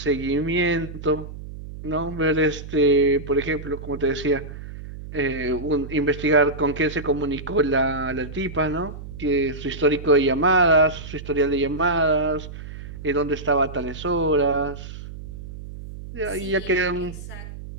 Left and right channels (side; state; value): right; noise; hum, 12 dB below the sound